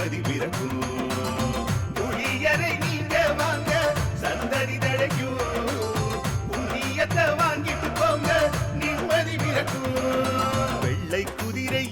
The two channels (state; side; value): identical; both; correlation 1.00